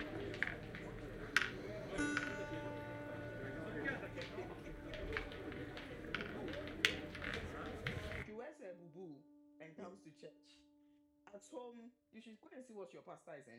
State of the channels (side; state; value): both; identical; correlation 1.00